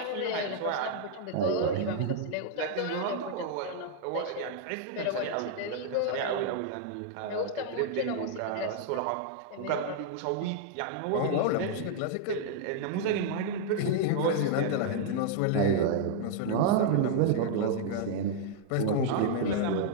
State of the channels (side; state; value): both; different; correlation -0.01